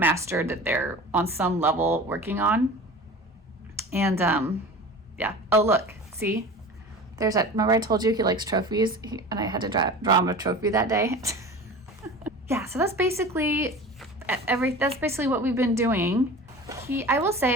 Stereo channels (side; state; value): both; normal; correlation 0.36